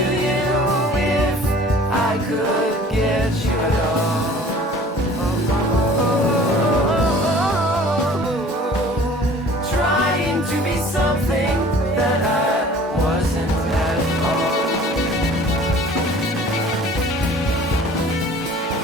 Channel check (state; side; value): normal; both; correlation 0.48